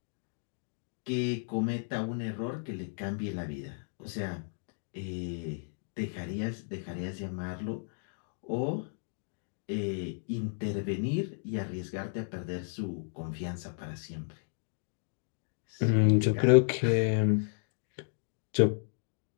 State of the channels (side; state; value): right; silent; digital silence